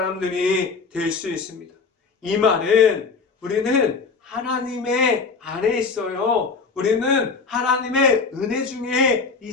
될 수 있습니다. 이 말은 우리는 하나님의 안에 있어요. 우리는 하나님의 은혜 중에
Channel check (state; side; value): quieter; right; 4.7 dB